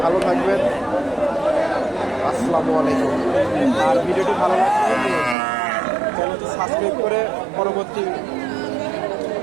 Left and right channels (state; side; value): drops out; left; at 5.4 s